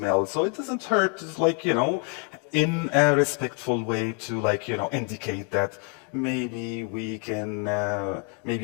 So it doesn't hurt, like, you know, in a respectful way to, like, you know, indicate that maybe we can,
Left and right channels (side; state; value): right; quieter; 33.9 dB